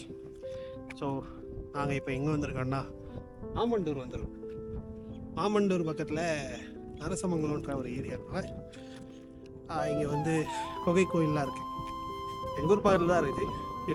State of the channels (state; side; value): identical; both; correlation 1.00